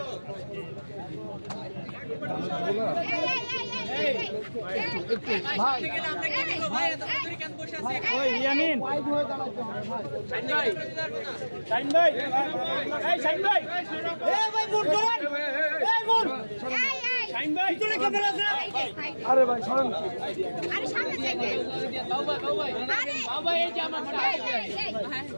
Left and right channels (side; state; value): both; inverted; correlation -1.00